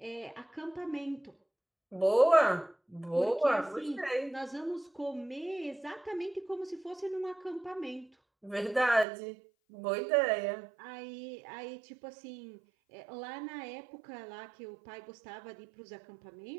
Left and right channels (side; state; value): left; drops out; at 9.1 s